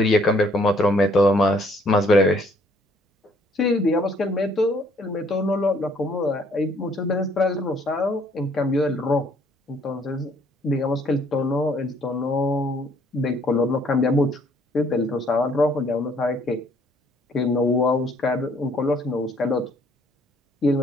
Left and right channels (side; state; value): both; normal; correlation 0.63